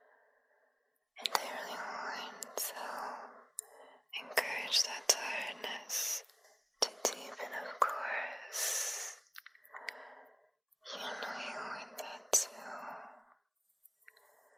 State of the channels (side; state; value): both; identical; correlation 1.00